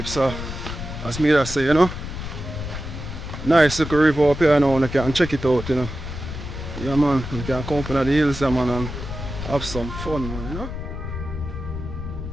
As me that say, you know, nice little river up here now. You can check it out, you know. Yeah, man, you can come up in the hills, yeah, man, and have some fun, man, you know.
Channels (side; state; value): left; noise; rumble, 7 dB below the sound